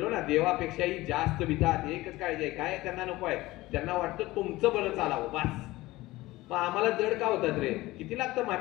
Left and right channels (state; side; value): quieter; right; 18.7 dB